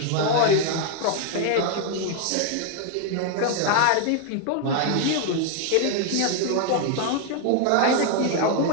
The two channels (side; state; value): both; different; correlation 0.00